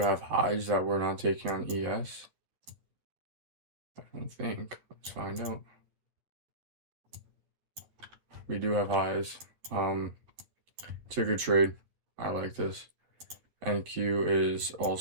highs that we're not taking on ES. I don't think. Let's find out. We do have highs. It's a good trade. I like this. NQ is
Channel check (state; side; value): late; left; 11 ms